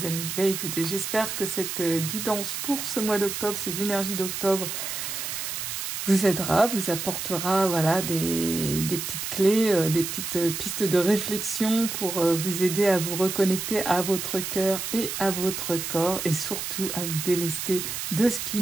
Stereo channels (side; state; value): right; noise; hiss, 4 dB below the sound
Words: amis, ben, écoutez, j'espère que cette guidance pour ce mois d'octobre, ces énergies d'octobre, vous aidera, vous apportera voilà, des petites clés, des petites pistes de réflexion pour vous aider à vous reconnecter à votre cœur et à votre corps et surtout à vous délester de ce qui